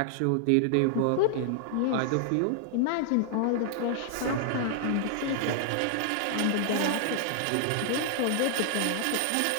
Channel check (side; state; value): both; different; correlation 0.00